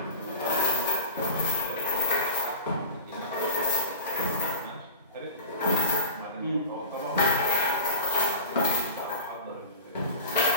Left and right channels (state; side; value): inverted; both; correlation -0.33